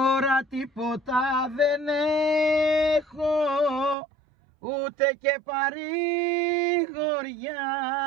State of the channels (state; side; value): drops out; left; at 4.0 s